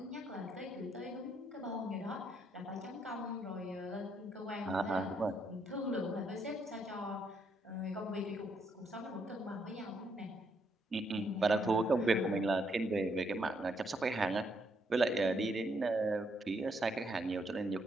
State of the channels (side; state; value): both; normal; correlation 0.75